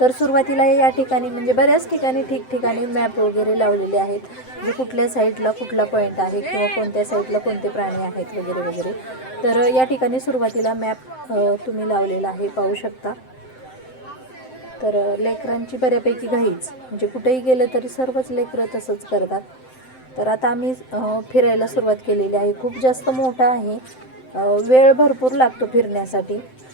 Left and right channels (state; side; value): late; right; 7.7 ms